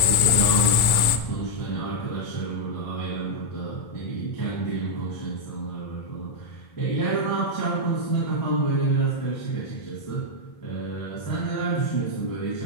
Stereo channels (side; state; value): right; late; 2.2 ms